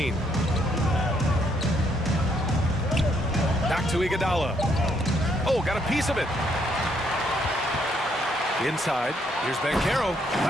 Back to Iguodala. Oh, got a piece of it. Inside, here's Banchero.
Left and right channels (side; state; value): both; normal; correlation 0.72